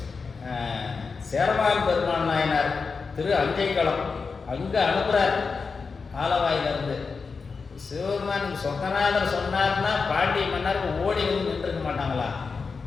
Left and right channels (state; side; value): quieter; right; 4.9 dB